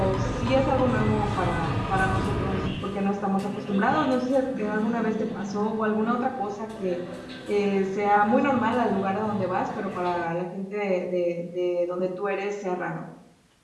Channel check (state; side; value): identical; both; correlation 1.00